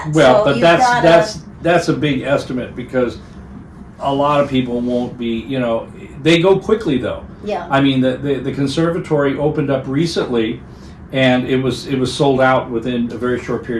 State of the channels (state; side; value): identical; both; correlation 1.00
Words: Well, So but you've that's a big estimate, because a lot of people won't be. They go quickly though. yeah. I mean, the conservatory opened up recently, and it was sold out within a very short